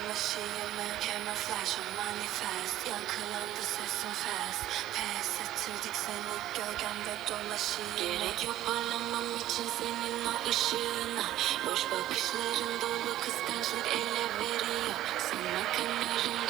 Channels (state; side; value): quieter; left; 13.8 dB